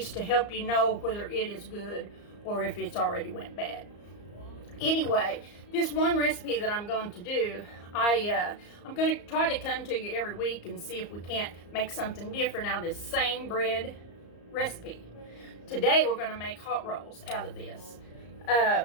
to help you know whether it is good or if it's already went bad. Anyway, this one recipe that I'm going to do, I'm going to try to come to you every week and see if we can't make something different out of this same bread recipe. Today we're going to make hot rolls out of this.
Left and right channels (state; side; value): late; right; 34 ms